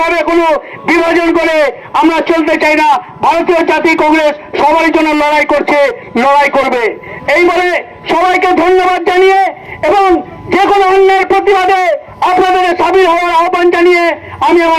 ভাবে কোনো বিভাজন করে আমরা চলতে চাই না। ভারতীয় জাতীয় কংগ্রেস সবার জন্য লড়াই করছে, লড়াই করবে। এই বলে সবাইকে ধন্যবাদ। প্রতিবাদে আপনাদের সামিল হওয়ার আহ্বান জানিয়ে আমি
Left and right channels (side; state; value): both; identical; correlation 1.00